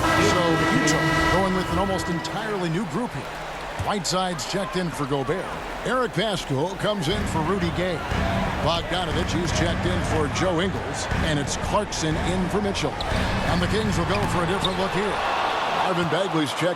So Utah going with an almost entirely new grouping. Whiteside's checked in for Gobert. Eric Pascal comes in for Rudy Gay. Bogdanovich is checked in for Joe Ingles. And it's Clarkson in for Mitchell. And the Kings will go for a different look here. Marvin Bagley's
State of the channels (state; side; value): identical; both; correlation 1.00